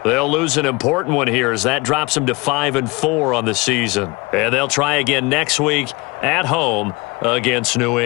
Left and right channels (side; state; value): right; quieter; 25.3 dB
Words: they'll lose an important one here as that drops them to 5-4 on the season. And they'll try again next week at home against New